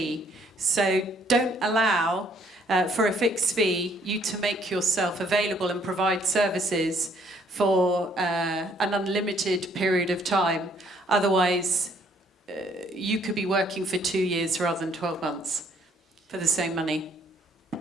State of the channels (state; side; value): normal; both; correlation 0.65